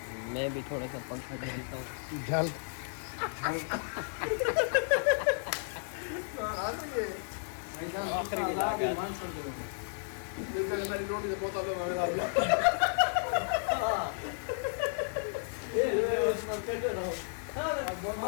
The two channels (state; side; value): silent; right; digital silence